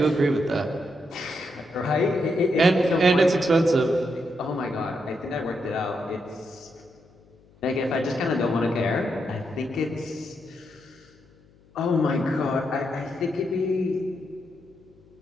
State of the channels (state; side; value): noise; left; hum, 29 dB below the sound